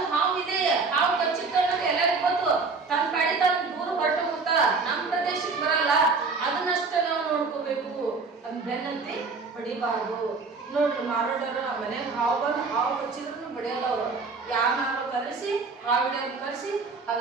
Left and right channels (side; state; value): left; quieter; 4.4 dB